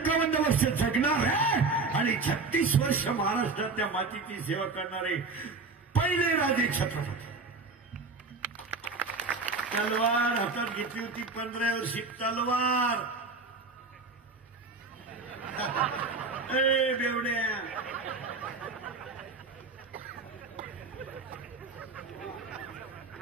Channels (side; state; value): left; quieter; 4.0 dB